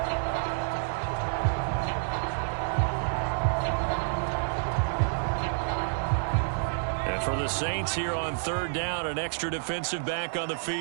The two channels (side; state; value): left; silent; digital silence